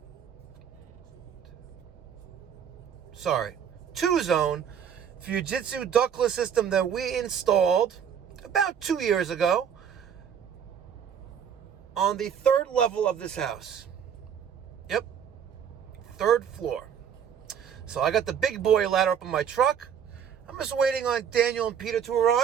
2-zone Fujitsu ductless system that we installed about 2 years ago on the 3rd level of this house. Yep, 3rd floor. So I got the big boy ladder up in my truck. I'm just waiting on Daniel and Peter to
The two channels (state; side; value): quieter; left; 8.2 dB